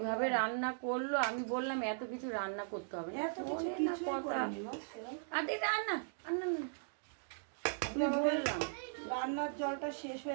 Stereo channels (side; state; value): left; silent; digital silence